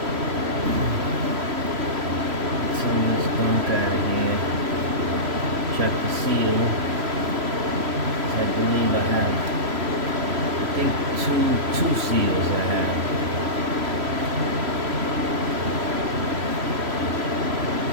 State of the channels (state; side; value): late; left; 3.0 ms